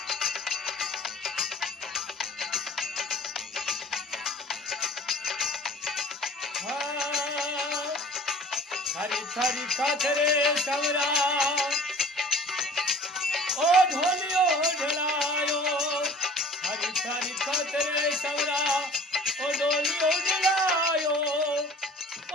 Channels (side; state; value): both; normal; correlation 0.47